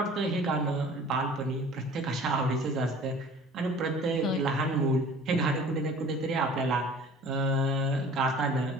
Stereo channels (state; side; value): normal; both; correlation 0.46